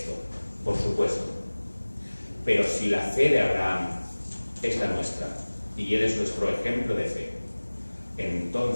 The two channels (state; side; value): inverted; both; correlation -1.00